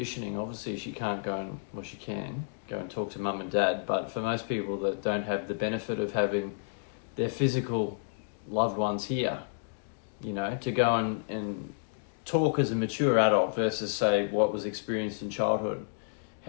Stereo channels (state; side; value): silent; right; digital silence